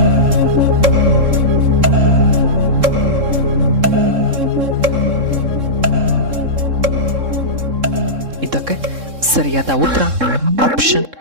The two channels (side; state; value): left; late; 3.7 ms